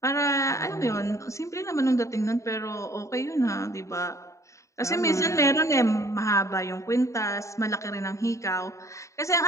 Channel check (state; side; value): late; right; 0.15 ms